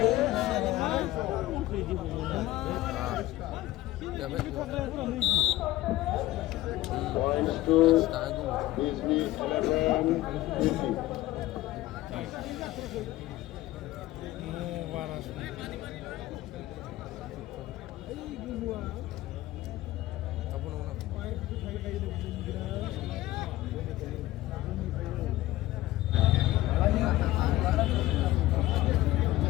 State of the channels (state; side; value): quieter; right; 16.5 dB